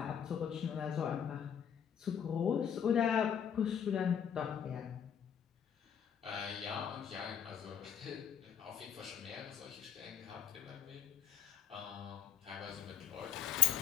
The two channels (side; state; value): right; quieter; 8.7 dB